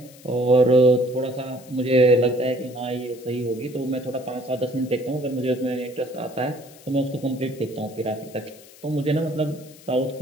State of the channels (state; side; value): noise; left; hiss, 22 dB below the sound